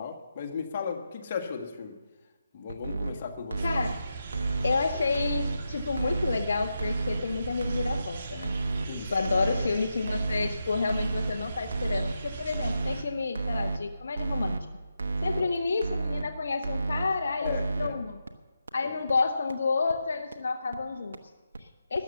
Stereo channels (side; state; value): both; inverted; correlation -0.87